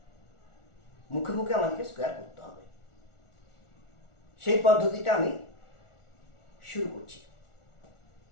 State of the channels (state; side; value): late; right; 1.4 ms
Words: মুখে মুখে আমাদেরকে স্কোয়ার করতে হবে, সেই পদ্ধতিটা আমি শুরু করছি।